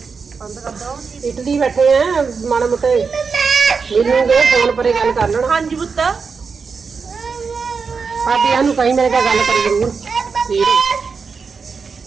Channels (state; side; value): quieter; left; 5.3 dB